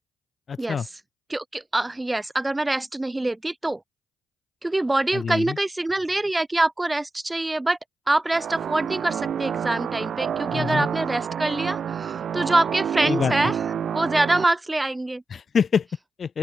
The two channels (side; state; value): both; normal; correlation 0.93